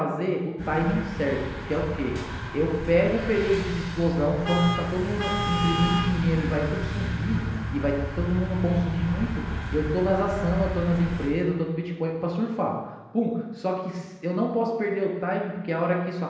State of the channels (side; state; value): both; identical; correlation 1.00